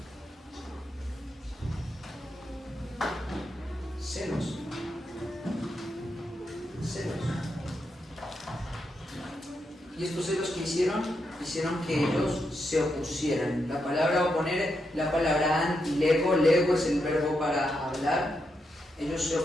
Celos. Y estos celos que hicieron que ellos se opusieran. La palabra oponer, la palabra antilego, lego es el verbo para hablar. Ellos se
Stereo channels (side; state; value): both; normal; correlation 0.83